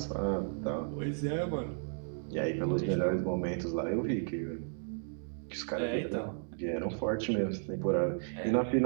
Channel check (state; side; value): silent; left; digital silence